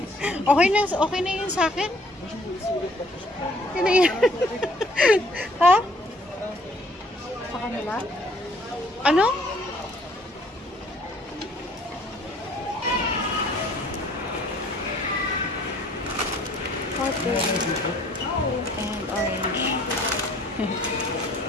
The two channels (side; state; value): both; normal; correlation 0.59